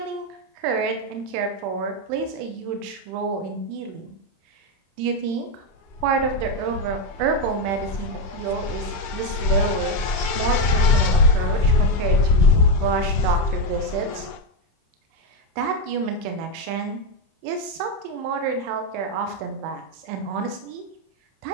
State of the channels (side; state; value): left; late; 31 ms